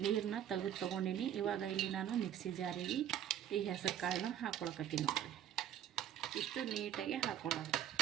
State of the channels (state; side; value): quieter; left; 10.3 dB